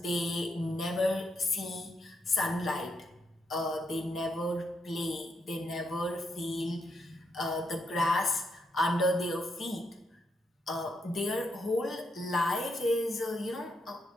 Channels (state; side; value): normal; both; correlation 0.79